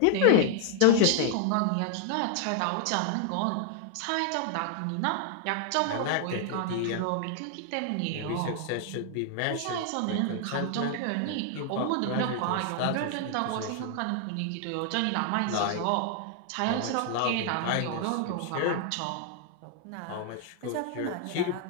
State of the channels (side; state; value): both; different; correlation 0.00